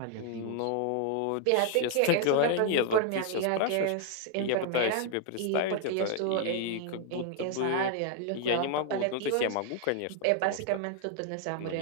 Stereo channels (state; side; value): different; both; correlation 0.00